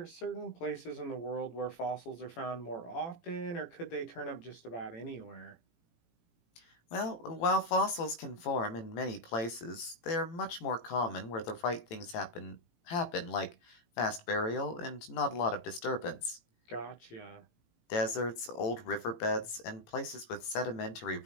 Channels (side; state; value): right; late; 18 ms